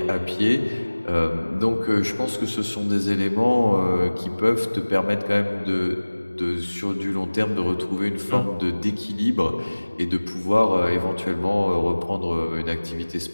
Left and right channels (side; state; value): both; inverted; correlation -1.00